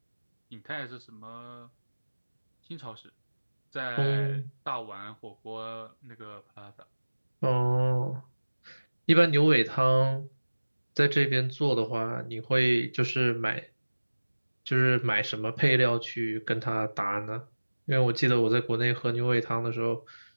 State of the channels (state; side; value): inverted; both; correlation -1.00